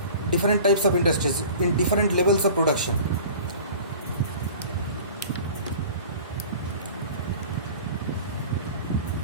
types of industries, in different levels of production.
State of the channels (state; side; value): inverted; both; correlation -0.42